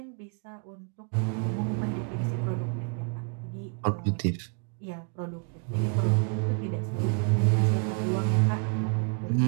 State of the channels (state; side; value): quieter; left; 36.8 dB